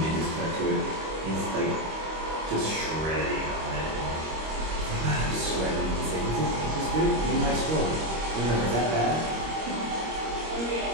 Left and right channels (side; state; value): left; late; 25 ms